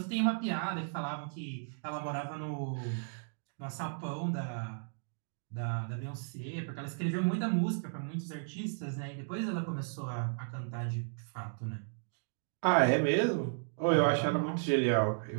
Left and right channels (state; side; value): silent; left; digital silence